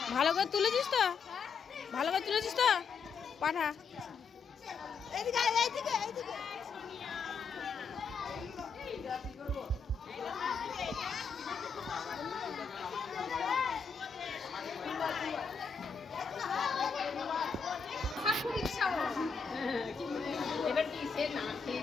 ভালো করে তুলেছিস তো? পাঠা। সে না খেয়ে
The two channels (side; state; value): right; quieter; 5.5 dB